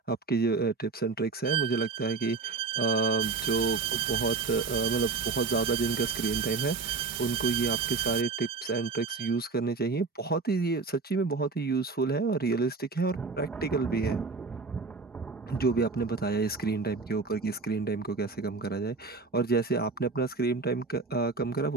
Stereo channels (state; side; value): quieter; left; 4.3 dB